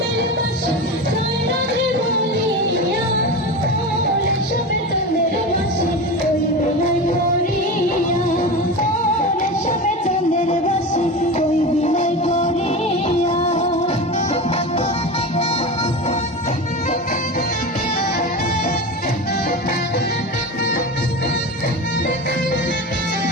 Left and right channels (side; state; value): both; normal; correlation 0.26